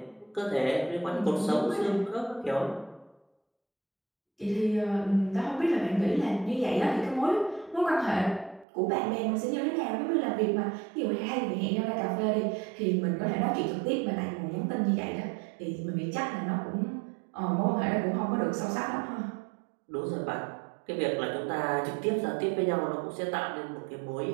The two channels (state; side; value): drops out; left; at 8.7 s